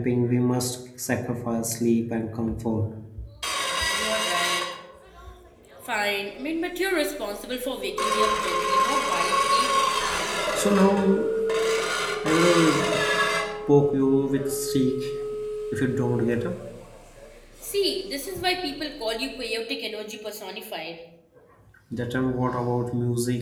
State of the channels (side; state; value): both; identical; correlation 1.00